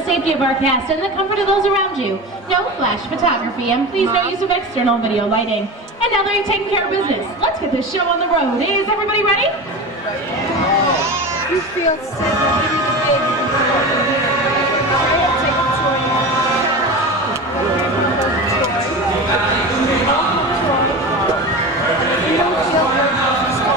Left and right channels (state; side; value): normal; both; correlation 0.28